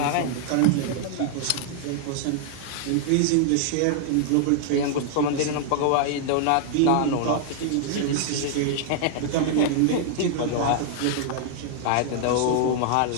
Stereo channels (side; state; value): both; different; correlation -0.01